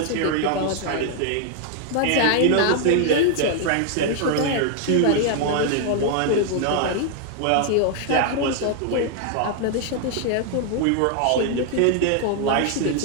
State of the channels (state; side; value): different; both; correlation 0.00